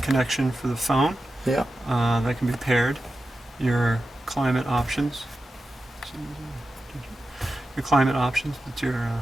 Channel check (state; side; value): normal; both; correlation 0.91